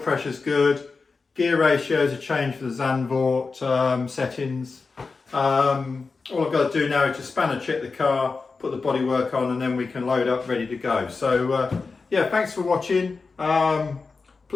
good. Gear ratios are changed for the Zandvoort settings. All I've got to do now is just spanner check the car, put the bodywork on, and then we can load up ready to go. So yeah, thanks for watching.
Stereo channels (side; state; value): right; quieter; 4.4 dB